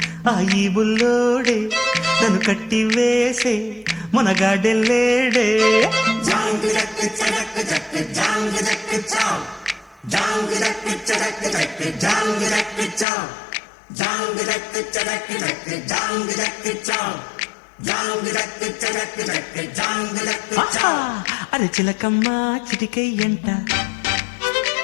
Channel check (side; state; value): right; drops out; at 13.1 s